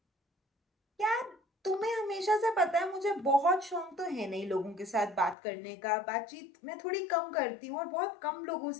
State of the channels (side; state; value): right; drops out; at 5.4 s